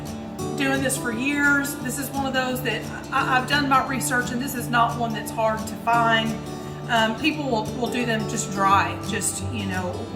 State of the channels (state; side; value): identical; both; correlation 1.00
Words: doing this for years. This is one of those that I've done my research, and this is not one that's hard to find. People will do them just dry, just, you know,